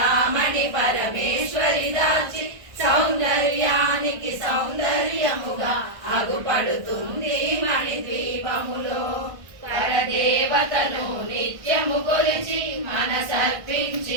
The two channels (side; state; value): left; late; 1.6 ms